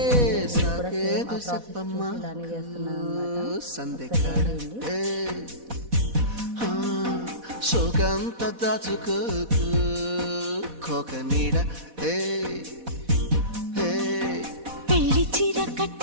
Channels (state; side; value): late; left; 4.1 ms